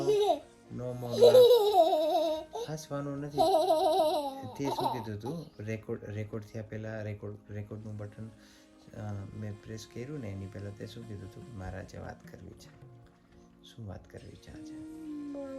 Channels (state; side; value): identical; both; correlation 1.00